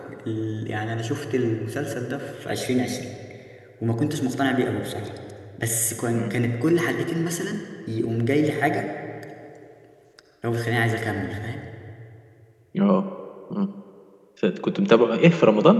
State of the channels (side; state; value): both; identical; correlation 1.00